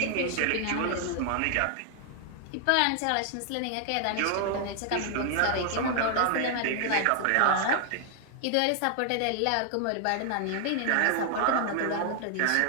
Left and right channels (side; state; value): both; different; correlation 0.00